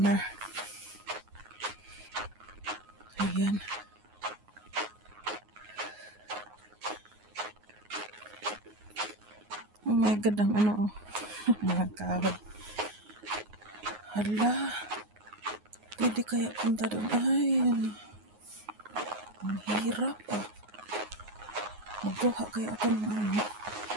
Ayan. Oh my God, ang mga kahoy. Hala. Pwede kaya punta doon. Ay. Ang hirap magkuha kaya ako ng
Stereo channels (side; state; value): left; late; 9.5 ms